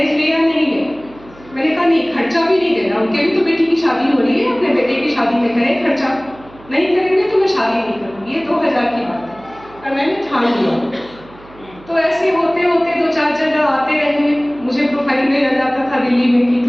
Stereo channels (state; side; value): noise; right; hum, 23 dB below the sound